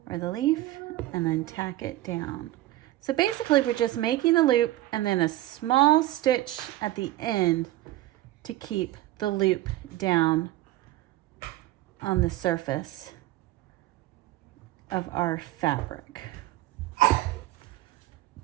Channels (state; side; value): quieter; left; 15.9 dB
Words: or the leaf and then tack it down. So basically we're just making a loop and then a small stitch at the end to keep the loop down on the surface of our fabric.